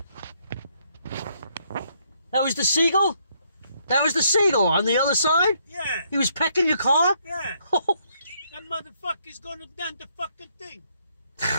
That was the seagull? That was the seagull on the other side? Yeah. He was pecking your car? Yeah. Holy, That motherfucker's gonna done the fucking thing.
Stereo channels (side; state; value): both; inverted; correlation -0.71